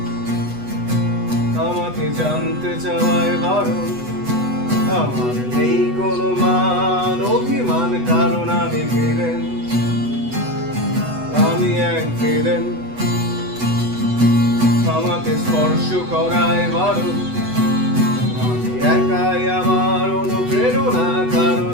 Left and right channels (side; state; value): left; late; 8.1 ms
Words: আমাকে জানতে চাওয়ায় বারণ, আমার নেই কোনো মান অভিমান, কারণ আমি ভিলেন। আমি এক ভিলেন, আমাকে স্পর্শ করায় বারণ, আমি একাই আমার অনুপ্রেরণা,